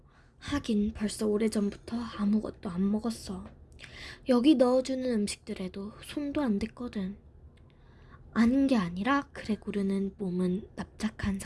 하긴 벌써 오래전부터 아무것도 안 먹었어. 여기 넣어주는 음식들에도 손도 안 댔거든. 아닌 게 아니라 그레고르는 몸은 납작한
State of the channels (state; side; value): identical; both; correlation 1.00